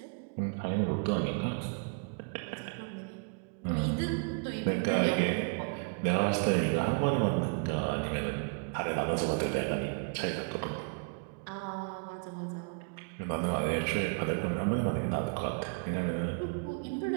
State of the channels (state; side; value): quieter; left; 37.0 dB